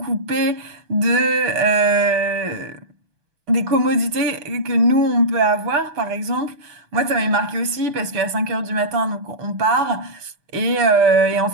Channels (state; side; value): late; left; 6.3 ms